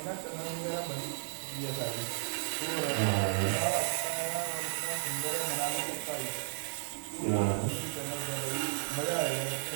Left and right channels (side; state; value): left; silent; digital silence